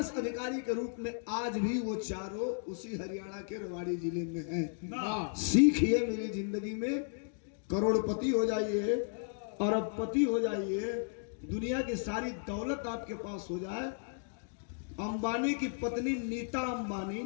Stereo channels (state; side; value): silent; right; digital silence